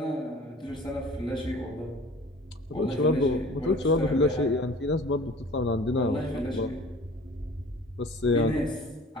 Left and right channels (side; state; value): both; normal; correlation 0.46